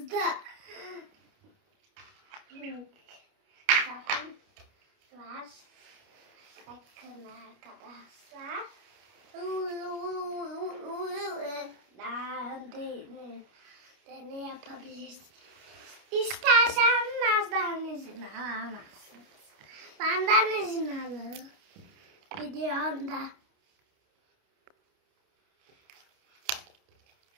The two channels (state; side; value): late; left; 29 ms